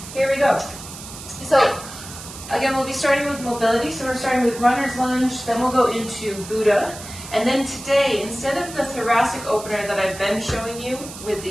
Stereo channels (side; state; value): right; noise; hiss, 13 dB below the sound